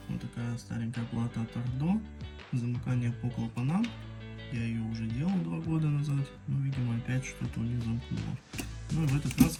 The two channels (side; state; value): both; identical; correlation 1.00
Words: вот такая старенькая плата от Ардо. Замыкание по клапанам. Я ее уже делал 2 года назад, но видимо опять что-то у нее замкнуло. Ну и в этот раз